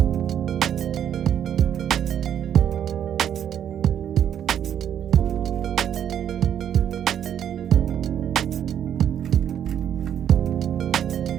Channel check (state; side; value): quieter; left; 9.5 dB